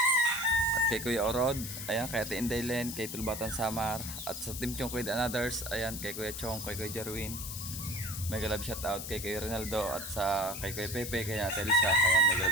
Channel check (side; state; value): left; noise; hiss, 7 dB below the sound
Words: At kay Kuya Orod, ayan, kay Ate Indaylen, kay Tulbatan Samar. At sa Team Chong Kuya and Others, ayan, kay Kuya Chong, kay Kuya Jerwin. Mega love shoutout kay Kuya Ronaldo at sa kay Kuya Pepe, kay Ate Elsa, ayan, mega